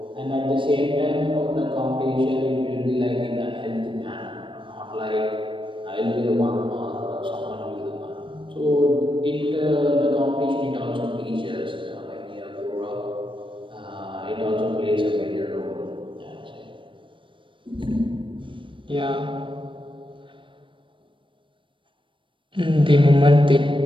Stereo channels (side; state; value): left; late; 0.25 ms